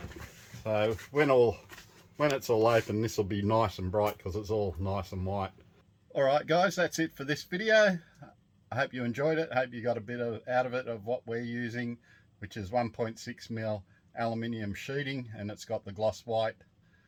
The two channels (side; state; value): both; identical; correlation 1.00